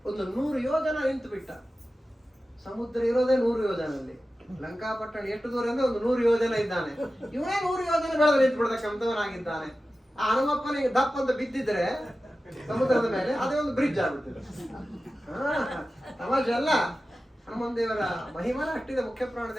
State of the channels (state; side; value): normal; both; correlation 0.94